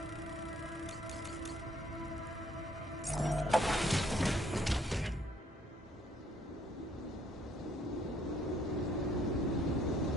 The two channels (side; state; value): both; normal; correlation 0.64